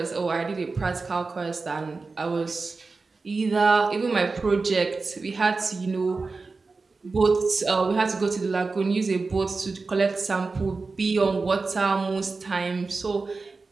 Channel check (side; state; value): left; quieter; 4.0 dB